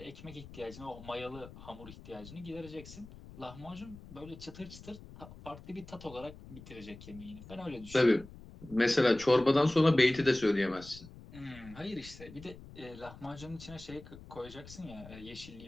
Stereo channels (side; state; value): left; noise; rumble, 17 dB below the sound